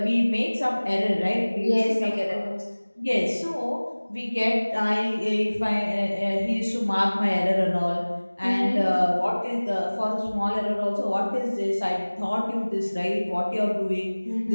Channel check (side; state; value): both; inverted; correlation -1.00